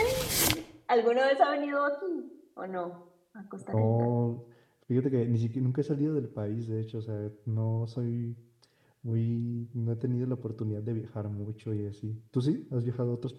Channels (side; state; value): both; identical; correlation 1.00